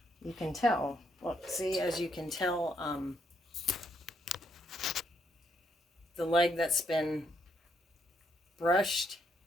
You can tell. Look, see, as you can tell, the leg that's been brushed.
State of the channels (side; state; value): both; normal; correlation 0.75